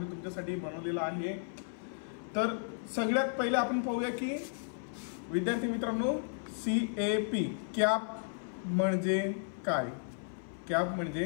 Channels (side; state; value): right; silent; 55 dB below the other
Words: तुमच्यासाठी बनवलेला आहे। तर सगळ्यात पहिले आपण पाहूया की विद्यार्थी मित्रांनो CAP कॅप म्हणजे काय। कॅप म्हणजे